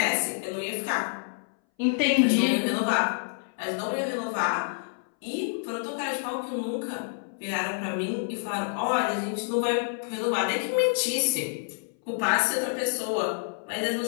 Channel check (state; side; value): silent; right; 59 dB below the other